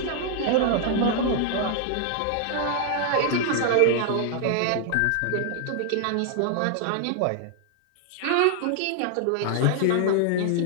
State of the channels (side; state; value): both; different; correlation -0.01